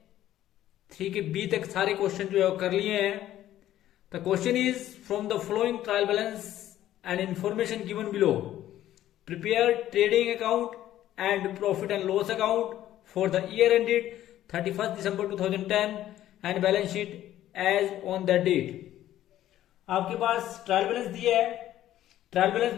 3 के बी तक सारे क्वेश्चन जो है वो कर लिए हैं। The question is from the flowing trial balance and information given below prepare trading account and profit and loss account for the year ended 31st December 2010 and balance sheet as on that date। आपके पास ट्रायल बैलेंस दिया है। ट्रायल बैलेंस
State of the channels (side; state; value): right; quieter; 13.0 dB